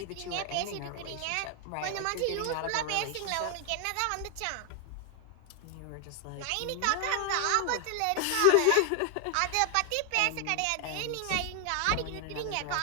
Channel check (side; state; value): both; different; correlation 0.00